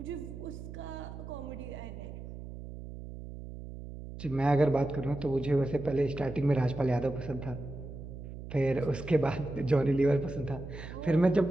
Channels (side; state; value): right; noise; hum, 11 dB below the sound